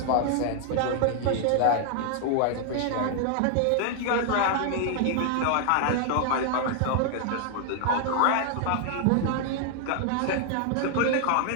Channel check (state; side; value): different; both; correlation 0.00